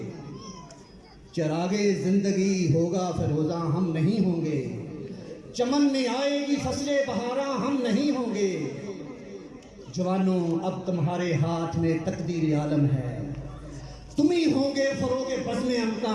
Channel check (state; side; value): identical; both; correlation 1.00